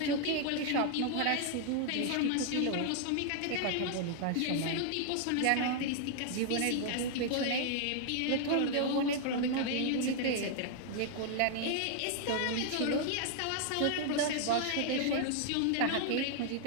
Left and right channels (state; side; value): different; both; correlation 0.00